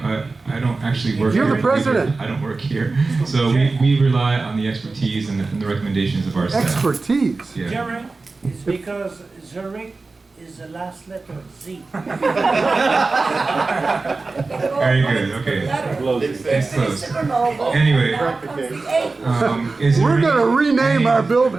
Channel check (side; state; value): left; quieter; 3.8 dB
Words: I don't actually work You're here. the president. I don't work here. So we rely on the expertise and the recommendations of our staff. Expertise. Yeah. Jerry, it's because Zurich is the last letter, Z. Very good. Okay. It's close. Anyway, is there We're any- gonna rename any- our